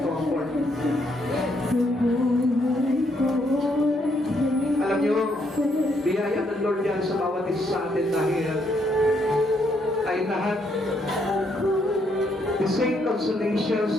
Alam niyo, biyaya ng Lord yan sa bawat isa sa atin dahil ay lahat the same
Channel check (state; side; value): normal; both; correlation 0.73